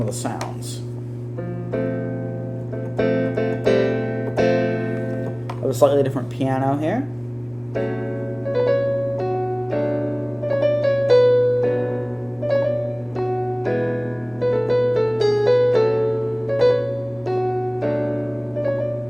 of the sounds. A slightly different piano here.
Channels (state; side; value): identical; both; correlation 1.00